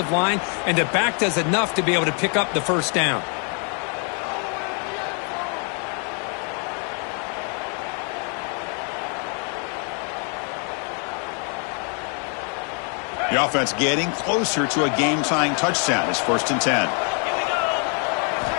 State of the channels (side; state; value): right; quieter; 39.7 dB